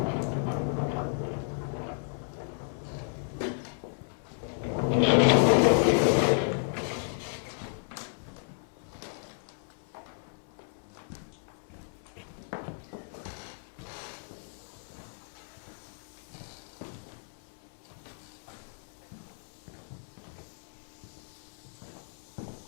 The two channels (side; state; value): right; silent; 56 dB below the other